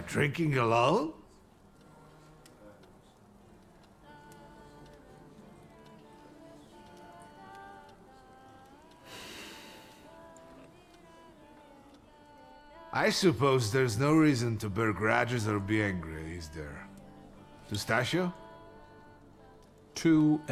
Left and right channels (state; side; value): identical; both; correlation 1.00